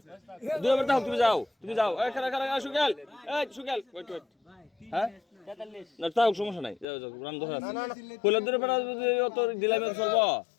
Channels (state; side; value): drops out; right; at 6.9 s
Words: দুই নম্বর দাও তুমি যাও এখানে এখানে সুকেল এই সুকেল ওয়েট ওয়েট হ্যাঁ না তাও সমস্যা নাই যাও যাও রান ধরে আছে ফুলের দূরে বেড়া অত দিলাম চলব